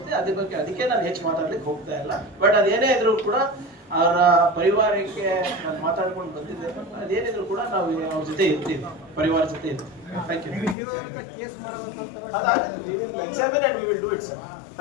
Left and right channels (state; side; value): drops out; right; at 10.8 s